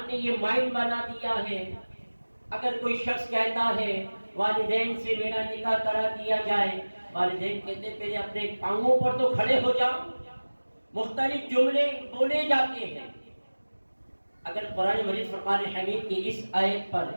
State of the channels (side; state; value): both; inverted; correlation -1.00